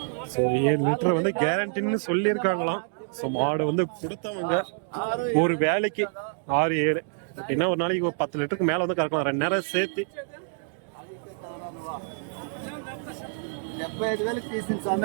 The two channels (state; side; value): silent; left; 57 dB below the other